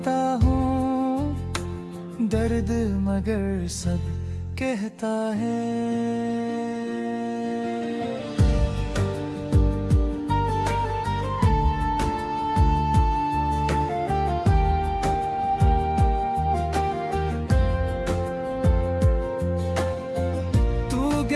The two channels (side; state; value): both; identical; correlation 1.00